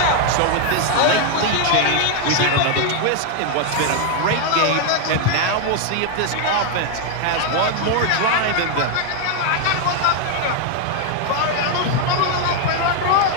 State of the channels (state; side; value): different; both; correlation 0.01